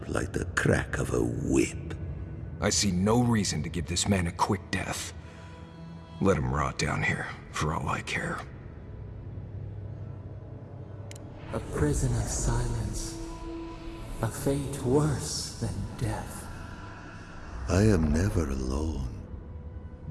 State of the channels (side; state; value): both; identical; correlation 1.00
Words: like the crack of a whip. I see no reason to give this man a quick death. Let him rot down here, for all I care. A prison of silence. A fate worse than death. I am never alone.